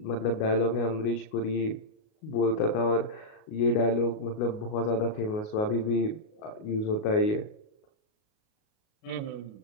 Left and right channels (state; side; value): late; right; 38 ms